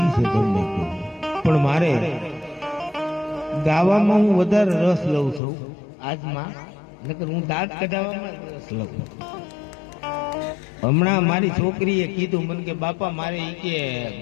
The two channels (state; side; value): drops out; right; at 5.4 s